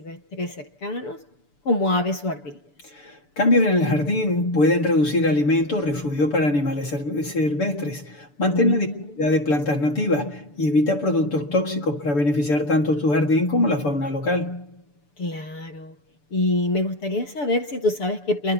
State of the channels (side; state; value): right; late; 6.9 ms